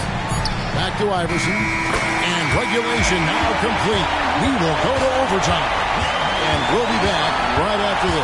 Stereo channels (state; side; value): identical; both; correlation 1.00